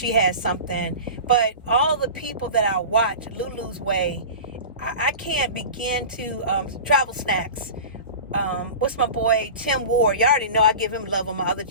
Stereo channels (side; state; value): both; inverted; correlation -0.33